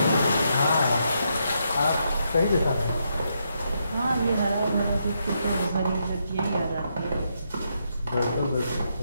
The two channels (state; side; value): inverted; both; correlation -0.80